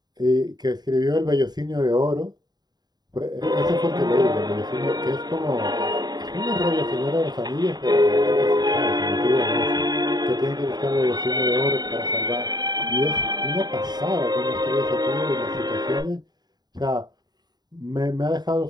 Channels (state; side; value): late; left; 0.20 ms